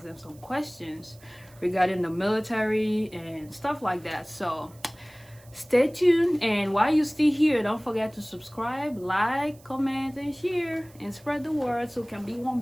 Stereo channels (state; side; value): noise; right; hiss, 26 dB below the sound